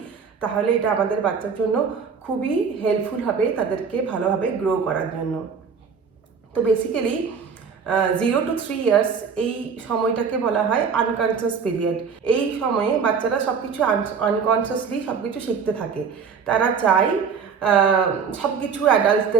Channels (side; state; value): left; quieter; 6.1 dB